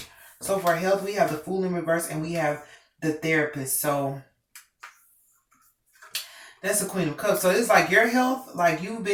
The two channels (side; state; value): both; identical; correlation 1.00